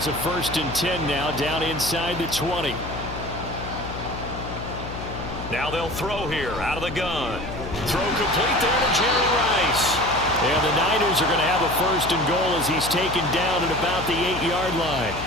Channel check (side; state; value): left; noise; hum, 9 dB below the sound